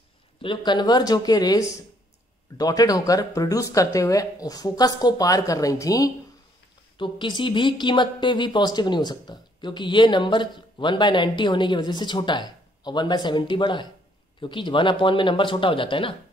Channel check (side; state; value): both; normal; correlation 0.67